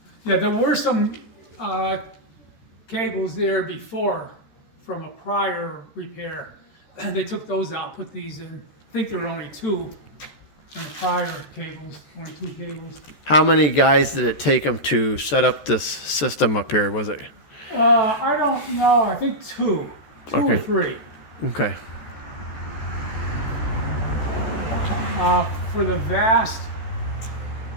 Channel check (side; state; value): right; late; 14 ms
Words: Yeah, there were some cables there before from a prior repair. And they took those out, put these in. I think there were only 2 in the prior cables, only 2 cables. How many guys did it take them to set up this system up here? Was it? I don't know. I think 2 or Okay. 3. Okay. For the vast